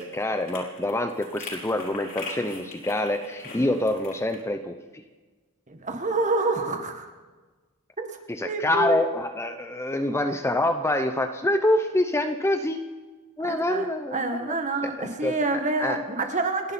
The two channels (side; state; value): both; normal; correlation 0.50